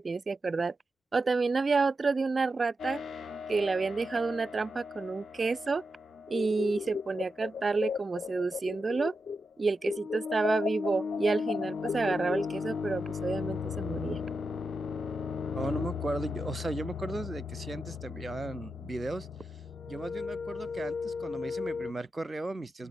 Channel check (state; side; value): normal; both; correlation 0.88